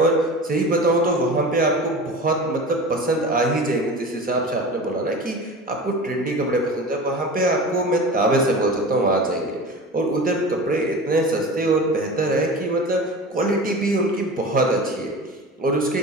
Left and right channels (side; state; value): both; normal; correlation 0.33